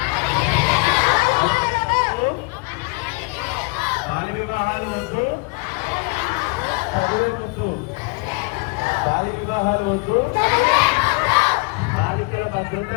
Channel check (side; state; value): right; quieter; 29.1 dB